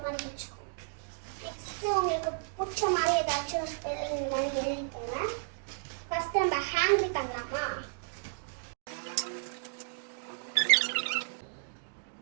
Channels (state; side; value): silent; left; digital silence